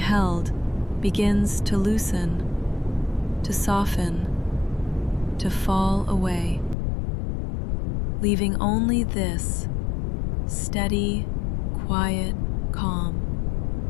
begins to loosen, to soften, to fall away, leaving only this steady, quiet calm,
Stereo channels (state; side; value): drops out; right; at 6.8 s